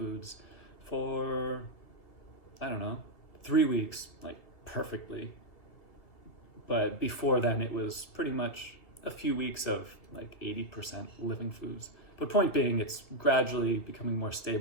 for, I don't know, 3 weeks, like perfectly. But before then, it was pretty much a few weeks of like 80% living foods. But point being, it's gradually becoming more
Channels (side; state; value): right; late; 1.7 ms